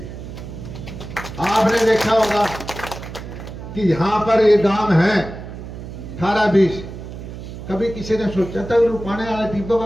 आपने देखा होगा कि यहां पर एक गांव है 18-20, कभी किसी ने सोचा था रुपाने वाले टीपों का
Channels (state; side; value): noise; right; hum, 11 dB below the sound